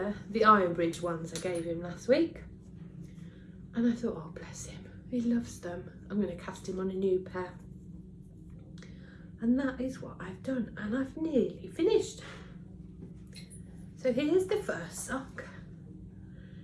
the Ironbridge ones I gave him last week. And I thought, oh bless him, he loves them. I'm going to cast him on a new pair. And that is what I've done, and I've nearly finished. So here's the first sock.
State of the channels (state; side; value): identical; both; correlation 1.00